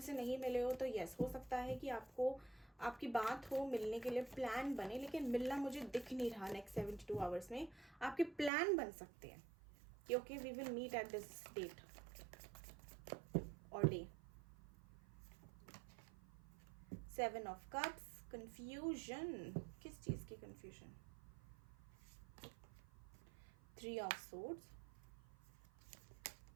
नहीं मिले हो तो यस, हो सकता है कि आपकी बात हो, मिलने के लिए प्लान बने, लेकिन मिलना मुझे दिख नहीं रहा नेक्स्ट 72 आवर्स में. आपके प्लान बन सकते हैं कि okay we will meet at this date और डे. 7 of cups, confusion. किस चीज की confusion? 3 of swords,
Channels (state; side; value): drops out; left; at 8.5 s